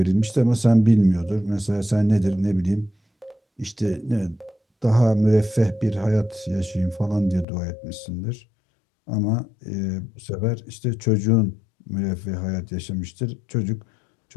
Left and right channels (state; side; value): drops out; right; at 7.5 s